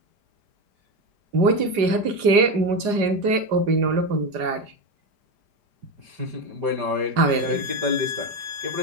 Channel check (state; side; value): late; left; 4.9 ms